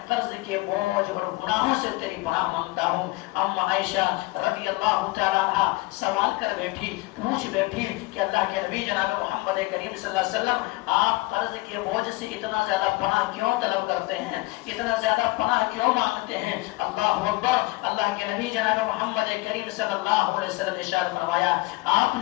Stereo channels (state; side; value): quieter; right; 22.0 dB